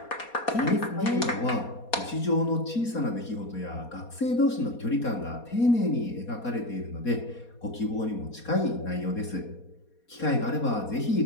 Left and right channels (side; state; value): right; late; 4.2 ms